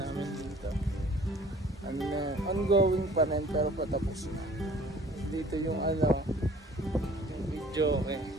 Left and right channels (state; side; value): normal; both; correlation 0.52